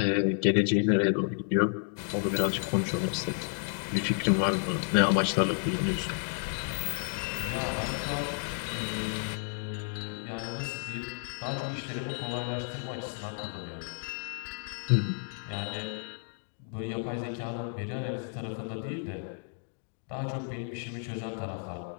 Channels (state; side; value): silent; right; 57 dB below the other